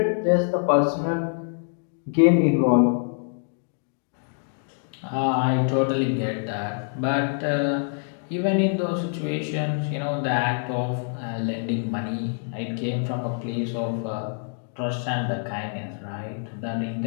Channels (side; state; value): right; silent; 59 dB below the other